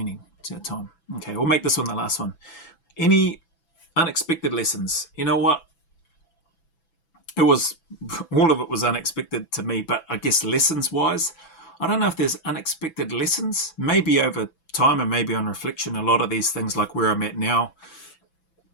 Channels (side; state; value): right; late; 6.0 ms